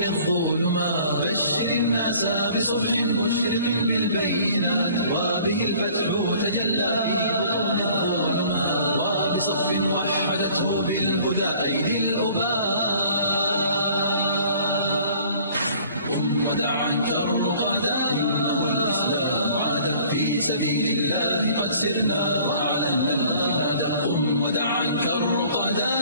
الظلمات. بشر الناس بصبح مشرق بالبينات، وبه الفتح تجلى في بطون الظلمات. وبصف وحدته بالهدى أيدي الأباء. قم ودع عنك الرقادا، إنه الإسلام عاد، في سبيل الله قد سرنا وأعلنا الجهاد. قم ودع عنك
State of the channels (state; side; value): inverted; both; correlation -0.53